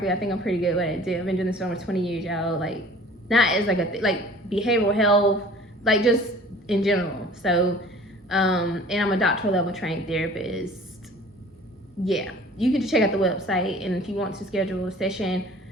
I think I'm pretty good at it. I've been doing this for almost 20 years, y'all. Like, not as like like behavioral health, like just in general. So, and I'm a doctoral level trained therapist. Yeah, you can just check out the website, and if you want to schedule a session,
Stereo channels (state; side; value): normal; both; correlation 0.47